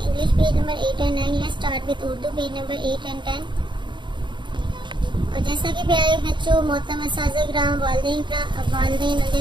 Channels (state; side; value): late; left; 0.23 ms